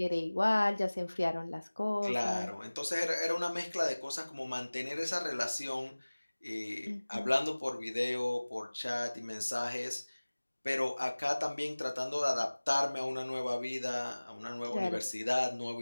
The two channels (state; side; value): inverted; both; correlation -1.00